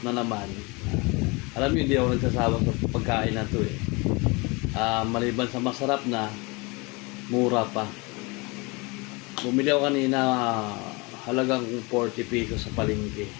na naman. Alam niyo, hindi ako nagsasawa sa pagkain na to eh. Maliban sa masarap na, mura pa. Bumili ako kanina, halagang 40 pesos sa palengke.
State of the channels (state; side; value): quieter; right; 27.2 dB